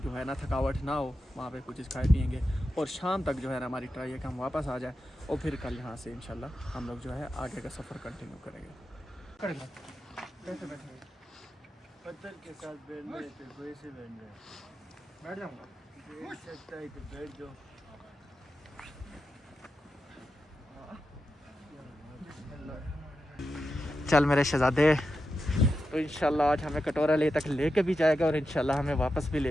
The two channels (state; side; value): normal; both; correlation 0.89